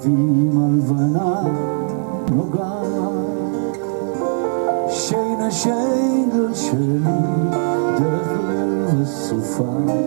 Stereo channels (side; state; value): left; silent; digital silence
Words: הלבנה נוגעת שינה שגל שלי דרך ליל וסופה